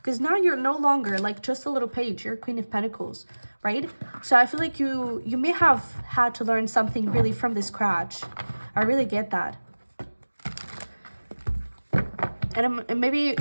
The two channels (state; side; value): inverted; both; correlation -1.00